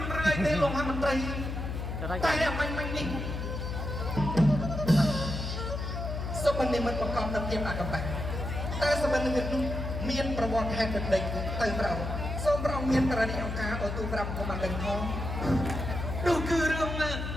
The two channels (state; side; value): noise; left; hum, 4 dB below the sound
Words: នរយទេលោកមន្ត្រីតែមិននេះសម្បត្តិមិនប្រកបដោយភាពអកប្បៈតែសម្បត្តិនេះនោះមានប្រវត្តិហេតុដេកទៅប្រោសូមប្រងមានករណីអង្គការឲ្យទូប្រាប់កុំបានដឹងផងនោះគឺរឿងនេះ